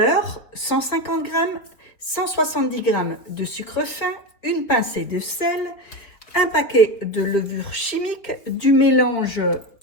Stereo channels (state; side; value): late; right; 4.4 ms